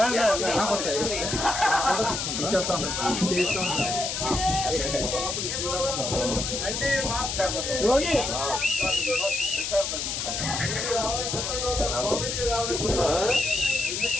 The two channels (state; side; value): noise; left; hiss, 2 dB below the sound